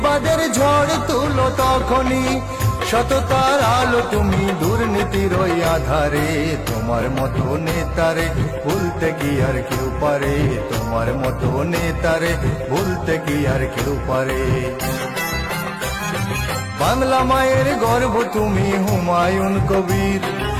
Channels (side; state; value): both; identical; correlation 1.00